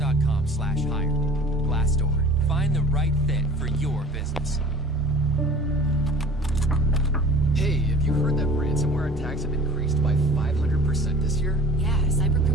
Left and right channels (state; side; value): normal; both; correlation 0.44